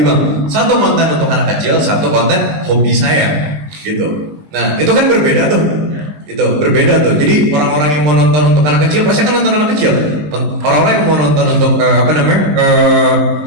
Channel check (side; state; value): left; late; 20 ms